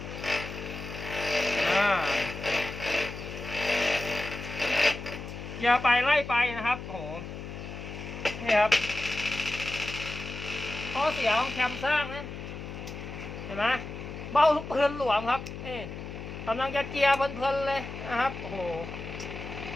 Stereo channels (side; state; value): left; noise; hum, 9 dB below the sound